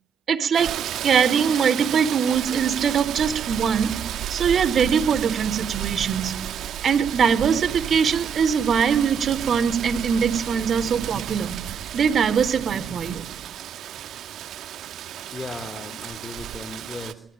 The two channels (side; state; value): left; quieter; 6.9 dB